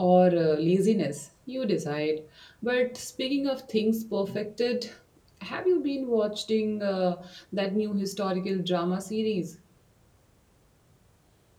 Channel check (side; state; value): both; identical; correlation 1.00